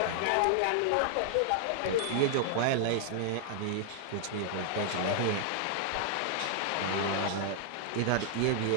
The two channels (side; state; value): both; different; correlation -0.01